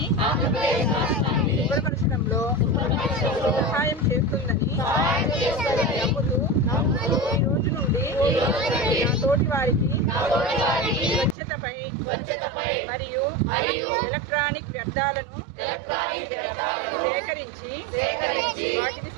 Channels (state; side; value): drops out; left; at 11.4 s